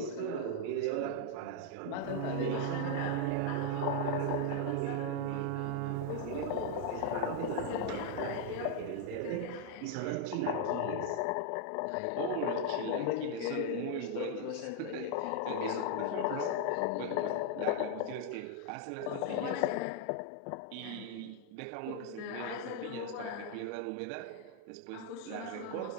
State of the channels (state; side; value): different; both; correlation 0.00